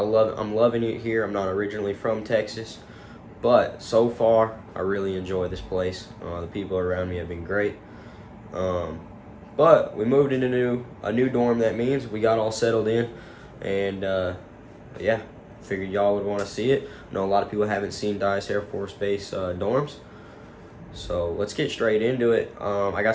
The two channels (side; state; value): both; identical; correlation 1.00